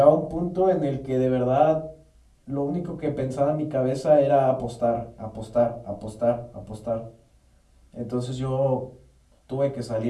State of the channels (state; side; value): identical; both; correlation 1.00